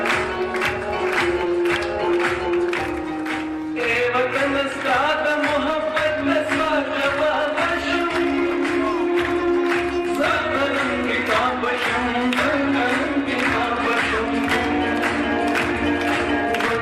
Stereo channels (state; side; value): identical; both; correlation 1.00